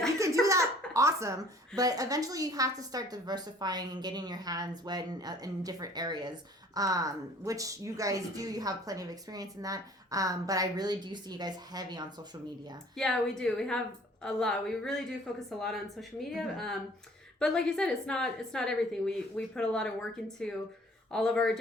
can do that, awesome. But eventually you have to start diversifying and getting your hands wet in different areas, which you guys do. You have plenty of experience in that. But I really do see you guys heavy on social media. Yeah, we do. We have a lot. We really do focus a lot on social media. But like you said, it's not everything. We put a lot of work into all of our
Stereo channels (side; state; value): both; normal; correlation 0.53